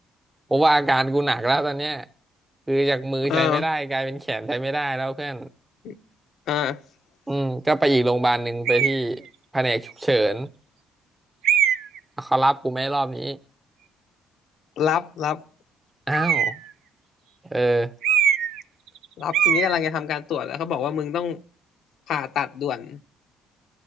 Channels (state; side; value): normal; both; correlation 0.78